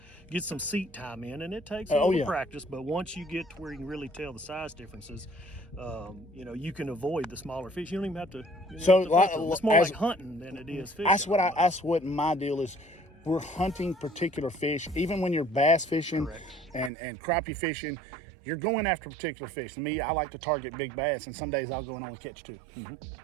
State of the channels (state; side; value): drops out; left; at 16.9 s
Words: get some seat time in, and it takes a little practice, but once you get to where you can really tell the size differences, you know, you can avoid the smaller fish. You don't even have to. It's more like hunting than it is fishing. That's what my deal is. We're hunting particular fish, even when you're bass fishing and crappie fishing. You're going after particular fish. To me, I like to target big bass, and some days I'll go and only catch 2.